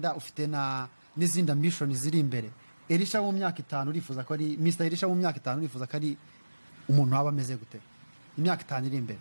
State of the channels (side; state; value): both; inverted; correlation -1.00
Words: ufite n'izindi ambition ziri imbere. Elisha mu myaka 5 urifuza ko ari Mr Elisha mu myaka 5 urifuza ko ari umuntu waba ameze gute imyaka 5 iri imbere?